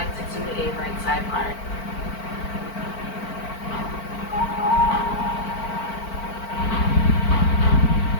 to do a right side part.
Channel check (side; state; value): right; late; 4.4 ms